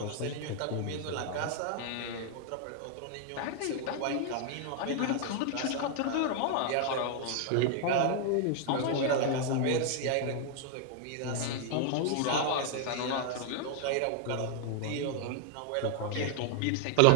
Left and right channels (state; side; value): different; both; correlation 0.00